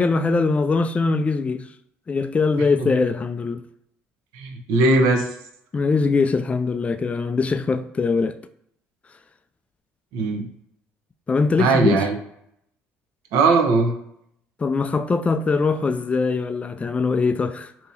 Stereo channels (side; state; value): both; normal; correlation 0.73